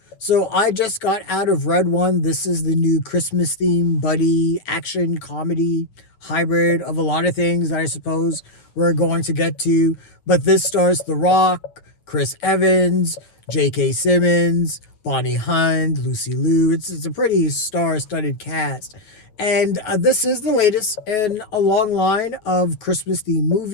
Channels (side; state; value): right; late; 9.5 ms